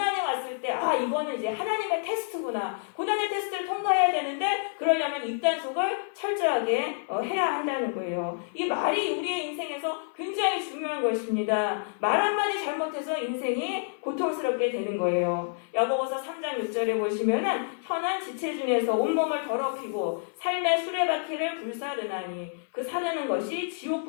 왔을 때 이거는 이제 하나님의 테스트구나. 고난의 테스트를 통과해야 되는데 그러려면 입단속을 철저하게 해야 한다는 거예요. 이 말이 우리의 인생에서 굉장히 중요한 것입니다. 말 한마디 잘못해서 인생이 고통스럽게 되는 거예요. 야고보서 3장 6절에 보시면은 혀는 지체 중에서 온몸을 더럽히고 삶의 수레바퀴를 불사르나니 그 사르는 것이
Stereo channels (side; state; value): right; silent; 56 dB below the other